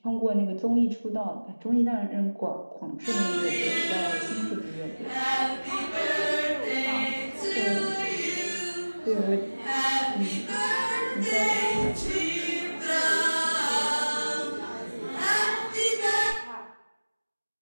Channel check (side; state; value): both; inverted; correlation -1.00